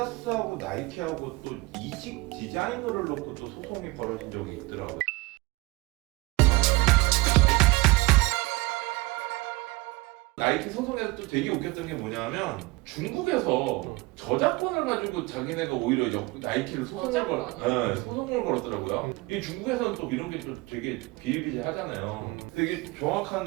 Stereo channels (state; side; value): quieter; left; 22.9 dB